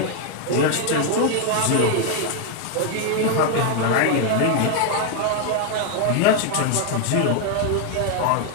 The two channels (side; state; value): both; different; correlation 0.00